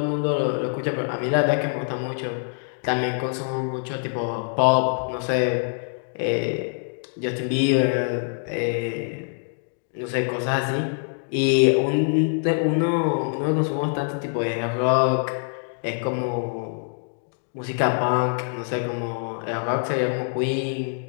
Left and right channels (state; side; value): silent; right; 62 dB below the other